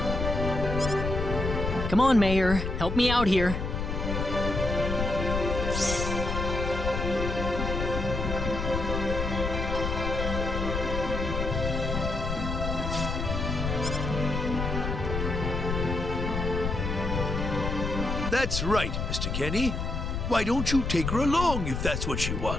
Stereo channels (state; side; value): noise; left; rumble, 2 dB below the sound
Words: Come on, Mayor. Help me out here. That's right, Mr. Kenny. Why don't you take her along if that's what she